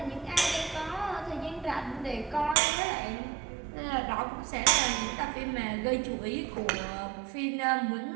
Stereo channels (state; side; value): drops out; left; at 2.6 s